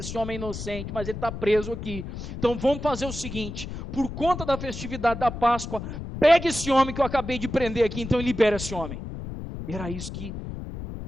homem é inocente, mas ele está preso aqui, então vamos fazer o seguinte, por conta da festividade da Páscoa, pega esse homem que eu acabei de prender aqui, então e libera esse homem. Era isso que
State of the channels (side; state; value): left; noise; rumble, 8 dB below the sound